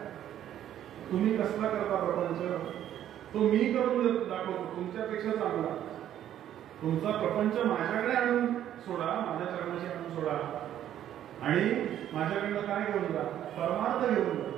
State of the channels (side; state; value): left; quieter; 11.2 dB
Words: तुम्ही कसला करता प्रपंच तो मी करून दाखवतो तुमच्यापेक्षा चांगला. तुमचा प्रपंच माझ्याकडे आणून सोडा, माझ्या चरणाशी आणून सोडा आणि माझ्याकडनं काय घेऊन जा? परमार्थ घेऊन जा.